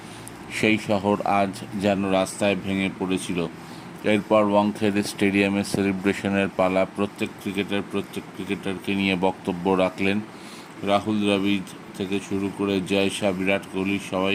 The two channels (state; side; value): identical; both; correlation 1.00